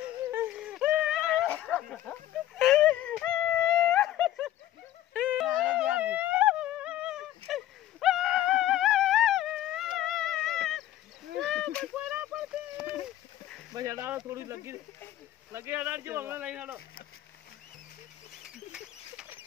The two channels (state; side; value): quieter; right; 13.2 dB